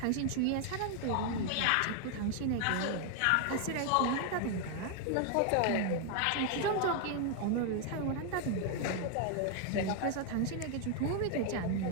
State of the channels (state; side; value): different; both; correlation 0.00